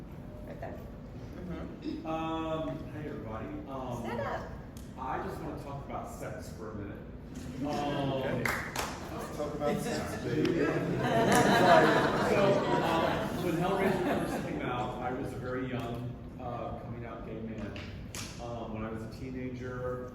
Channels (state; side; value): identical; both; correlation 1.00